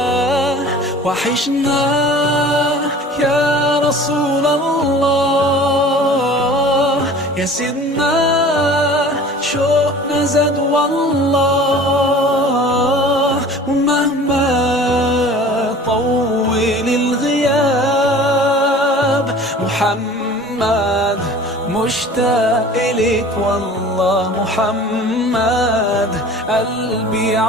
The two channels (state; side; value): normal; both; correlation 0.44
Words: وحشنا يا رسول الله يا سيدنا شوقنا زاد والله. ومهما طول الغياب محمد مشتاق إليك والله. محمد قلبي